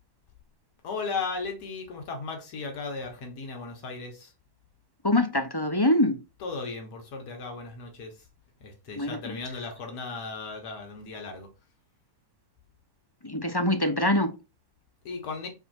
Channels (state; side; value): late; right; 1.1 ms